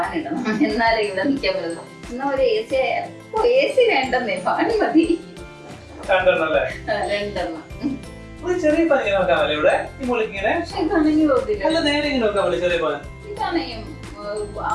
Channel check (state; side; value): identical; both; correlation 1.00